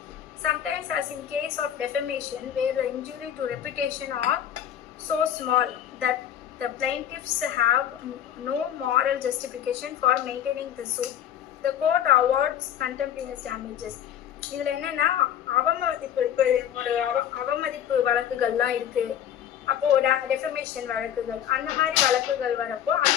Sometimes, as in case of defamation, where the injury to reputation are so small that the plaintiffs have no moral justification for maintaining the suit, the court awards contemporaneous damages. இதில் என்னென்னா அவமதிப்பு வழக்குகள்லாம் இருக்குது. அப்போது defamation வழக்குகள், அந்த மாதிரி வழக்குகள் வரப்போ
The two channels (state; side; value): quieter; right; 10.2 dB